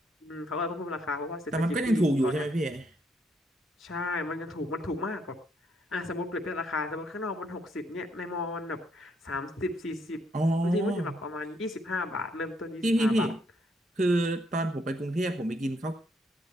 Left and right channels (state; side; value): normal; both; correlation 0.72